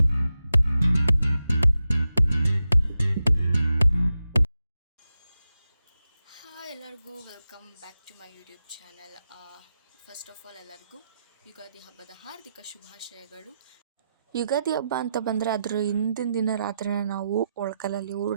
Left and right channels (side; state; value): both; inverted; correlation -0.89